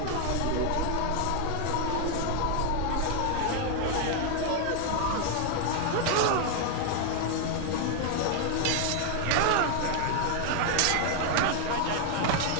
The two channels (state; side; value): different; both; correlation 0.00